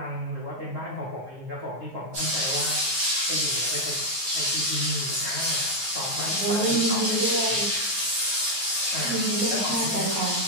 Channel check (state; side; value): late; left; 9.4 ms